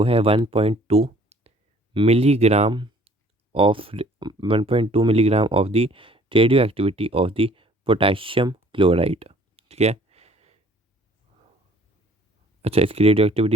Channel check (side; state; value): both; normal; correlation 0.56